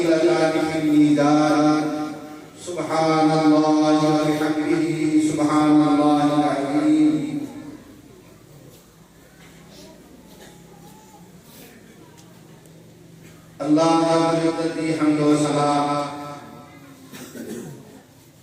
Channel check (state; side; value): identical; both; correlation 1.00